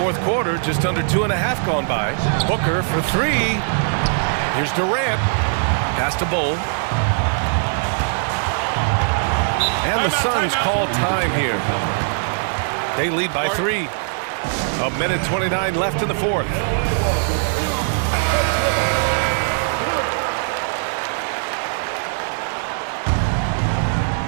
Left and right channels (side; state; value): left; silent; digital silence